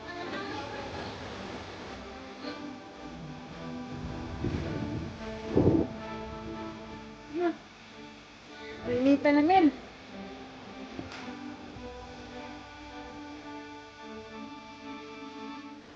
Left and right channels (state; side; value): identical; both; correlation 1.00